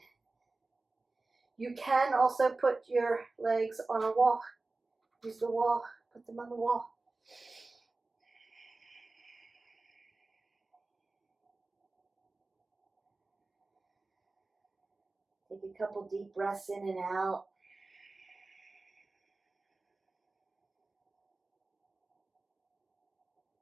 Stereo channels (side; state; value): left; quieter; 3.4 dB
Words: You can also put your legs on a wall. Use the wall, put them on the wall. Take a couple deep breaths in and out.